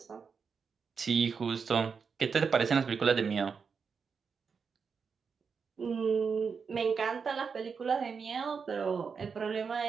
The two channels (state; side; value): quieter; left; 5.7 dB